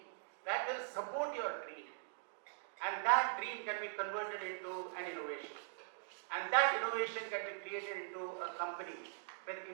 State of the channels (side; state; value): left; silent; digital silence